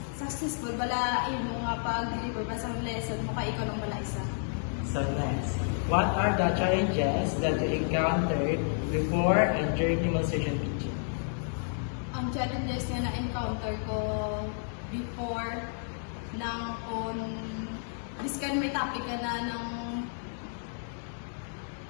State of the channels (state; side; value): silent; right; digital silence